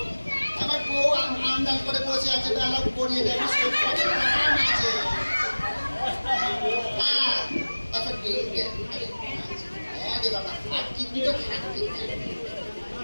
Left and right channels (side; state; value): both; inverted; correlation -1.00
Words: আমার বউ আন্দাজ করে বসে আছে বেলা পড়িয়ে দেবে আছে। হ্যাঁ আচ্ছা হ্যাঁ রে বাবা আর কিডনি তো থাকবে।